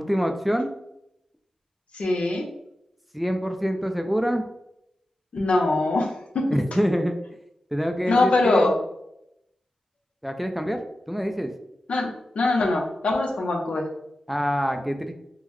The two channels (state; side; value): normal; both; correlation 0.92